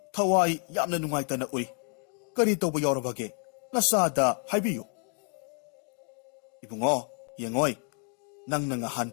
thawai yamna nungaitana ui kari tawba yorabage nasada haibiyu ibungo yengoi nangna ngahan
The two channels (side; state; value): right; quieter; 39.6 dB